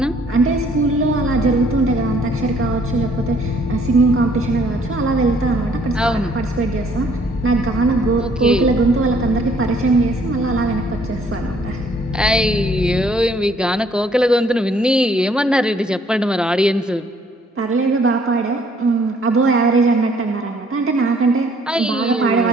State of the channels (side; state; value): both; normal; correlation 0.63